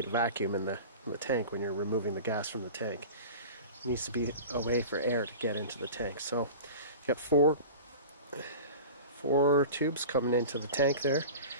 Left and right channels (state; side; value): inverted; both; correlation -0.35